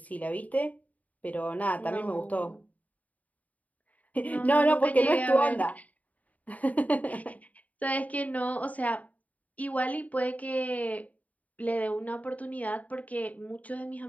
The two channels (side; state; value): right; late; 0.072 ms